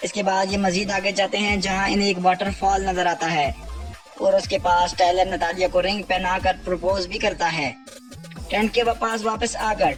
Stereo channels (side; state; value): both; identical; correlation 1.00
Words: اس کے بعد یہ مزید آگے جاتے ہیں جہاں انہیں ایک واٹر فال نظر آتا ہے اور اس کے پاس ٹائلر نتالیہ کو رنگ پہنا کر پروپوز بھی کرتا ہے۔ ٹینٹ کے پاس واپس آ کر